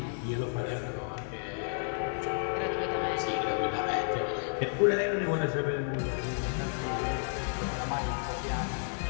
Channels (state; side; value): silent; right; digital silence